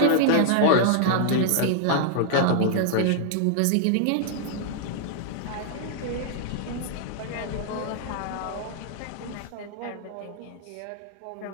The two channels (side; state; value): both; different; correlation -0.01